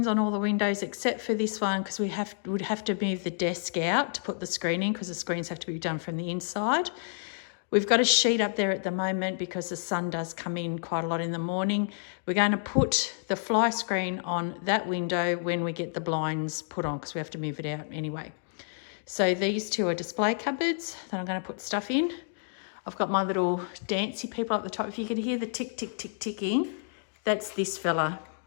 on all the windows except for this one because we would have to move the desk out to put the screen in because the screens have to be done from the inside. We've got a sheet up there at the moment because the sun does come in quite a lot in the morning. We're going to put the fly screen on that window when we get the blinds put on because we have to move it out anyway. So these two are display cupboards that I'm going to put stuff in. I've got my little dancey people up the top. If you can hear the tick, tick, tick, ticking, that's this fella.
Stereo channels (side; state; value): right; silent; digital silence